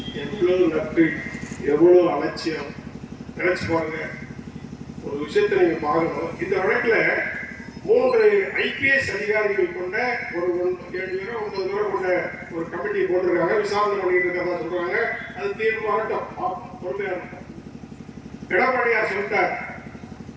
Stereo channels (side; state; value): both; identical; correlation 1.00